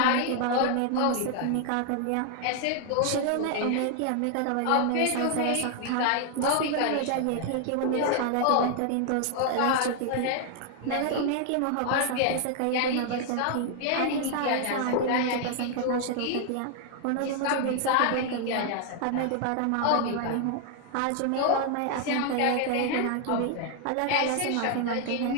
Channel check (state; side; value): different; both; correlation 0.00